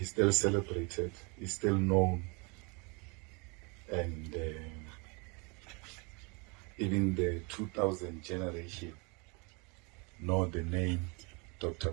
still celebrated, he's still known. And even the 2000 generation know the name Dr.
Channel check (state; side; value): quieter; left; 30.7 dB